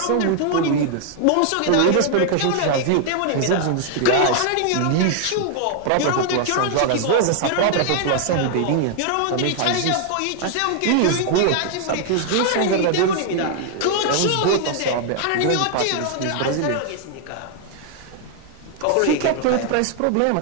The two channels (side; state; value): both; different; correlation 0.00